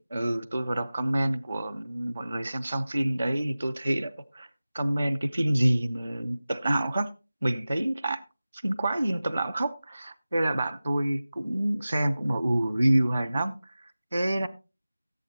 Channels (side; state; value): both; inverted; correlation -0.96